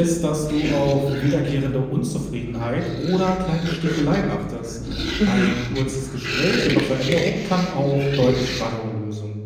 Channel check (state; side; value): identical; both; correlation 1.00